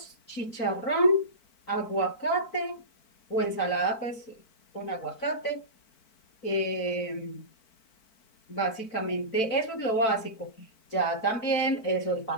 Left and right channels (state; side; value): late; right; 4.5 ms